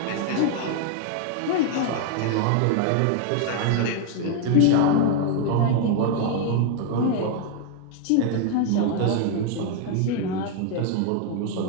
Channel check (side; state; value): both; different; correlation 0.00